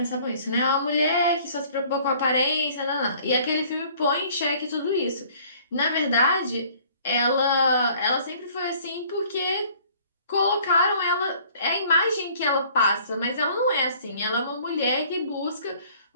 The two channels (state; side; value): inverted; both; correlation -0.55